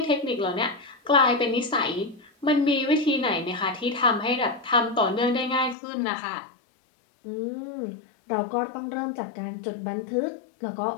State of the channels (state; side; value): drops out; right; at 5.8 s